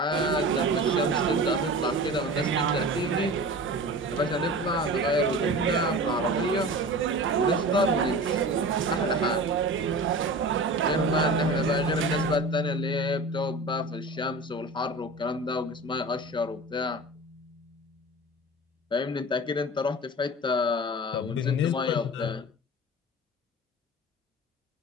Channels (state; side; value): normal; both; correlation 0.34